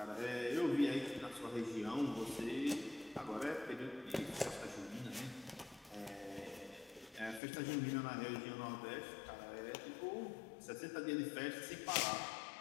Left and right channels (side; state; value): right; drops out; at 7.4 s